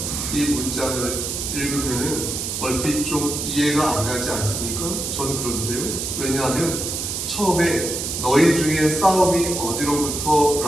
이 문장을 읽으면은 얼핏 좀 이해가 안 가지 않습니까? 전 그런데요. 왜냐하면 처음에 너희 중에 싸움이 어디로부터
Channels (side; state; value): right; noise; hiss, 3 dB below the sound